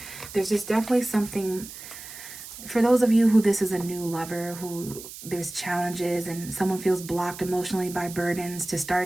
There's just definitely something, for those of you who this is a new lover, who there's challenges and someone feels blocked emotionally by burdens, to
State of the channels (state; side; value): noise; right; hiss, 14 dB below the sound